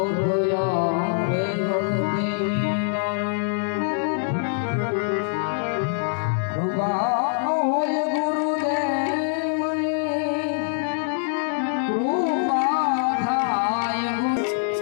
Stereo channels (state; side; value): silent; right; digital silence